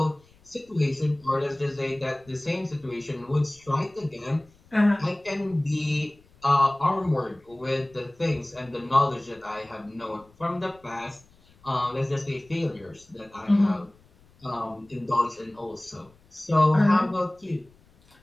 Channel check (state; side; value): noise; left; rumble, 29 dB below the sound